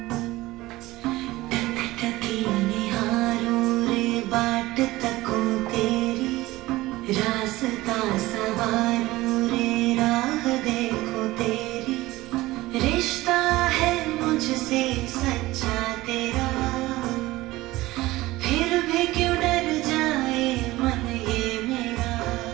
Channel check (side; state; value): left; quieter; 18.5 dB